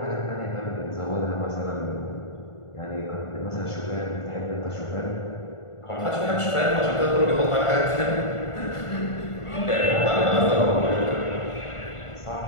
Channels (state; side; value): late; right; 1.5 ms